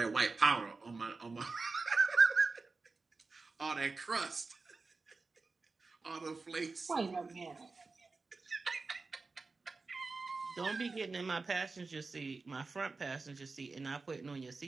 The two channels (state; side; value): quieter; left; 4.0 dB